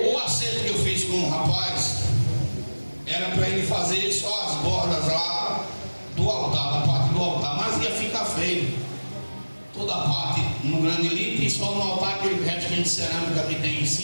acerto que eu fiz com o rapaz era para ele fazer só as bordas lá do altar, da parte do altar, mas ia ficar feio. Toda a parte no granilito e só no altar aquele restinho de cerâmica que tem em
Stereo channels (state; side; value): inverted; both; correlation -1.00